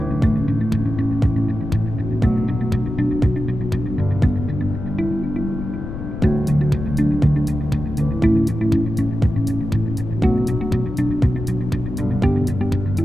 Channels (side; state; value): left; noise; rumble, 7 dB below the sound